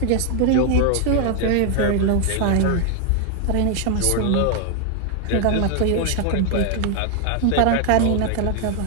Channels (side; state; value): both; different; correlation 0.00